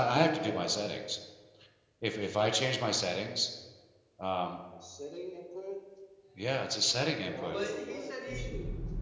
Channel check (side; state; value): both; identical; correlation 1.00